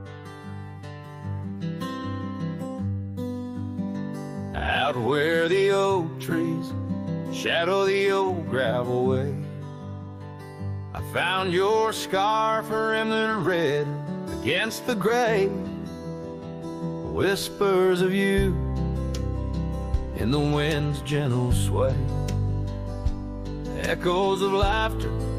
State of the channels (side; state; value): both; identical; correlation 1.00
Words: Out where the oak trees shadow the old gravel way, I found your scarf remnant red against the gray. Whispers of you in the wind's gentle sway, echoes of laughter